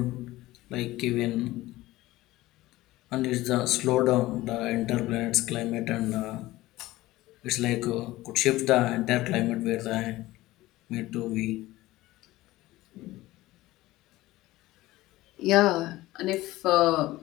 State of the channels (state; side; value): quieter; right; 17.6 dB